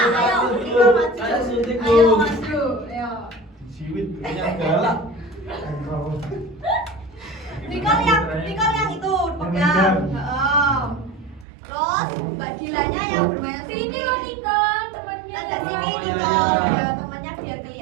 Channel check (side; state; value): left; drops out; at 11.5 s